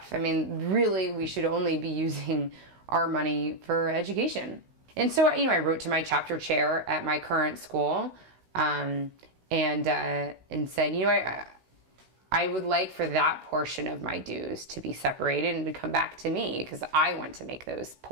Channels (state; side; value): late; left; 16 ms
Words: I mean, really, we should only be using our money for education. And so, you know, I wrote to my chapter chair at my current school, and said, you know, I would like for that portion of my dues to be separated and to come back to me, because I want to make those